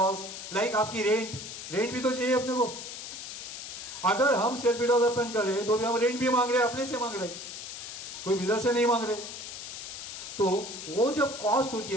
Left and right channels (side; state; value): left; noise; hiss, 9 dB below the sound